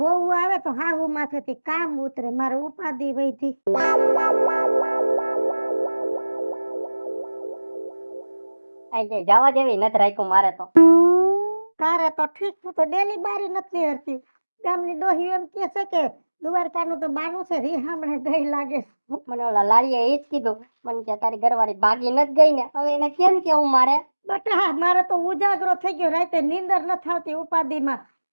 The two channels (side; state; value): both; inverted; correlation -1.00